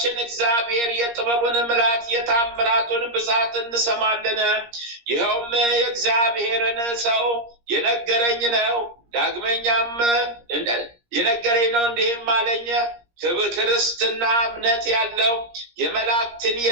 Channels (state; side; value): late; left; 17 ms